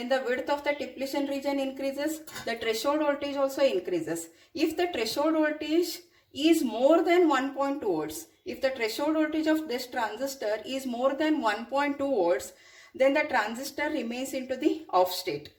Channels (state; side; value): identical; both; correlation 1.00